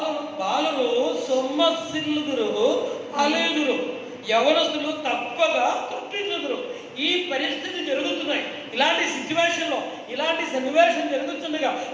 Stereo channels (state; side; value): identical; both; correlation 1.00